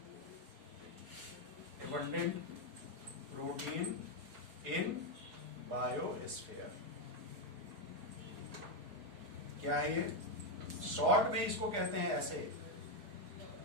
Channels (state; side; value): late; left; 4.8 ms